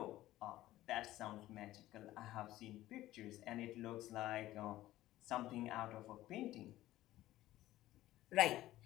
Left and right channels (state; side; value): quieter; right; 15.3 dB